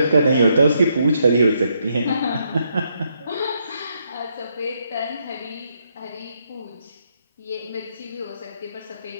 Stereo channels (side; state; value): both; inverted; correlation -0.76